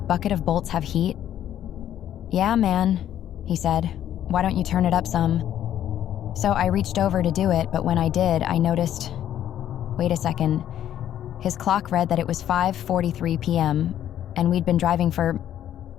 of bolts have heat?" "Yeah, man," he said. "Why don't you turn it up some?" So I reached over to do it, but when I did, I noticed, wait a second, his clock read that it was 5:43 p.m., and we'd been driving for,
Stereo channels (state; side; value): quieter; right; 11.1 dB